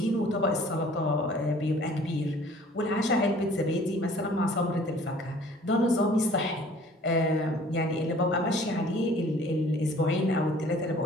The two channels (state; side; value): normal; both; correlation 0.52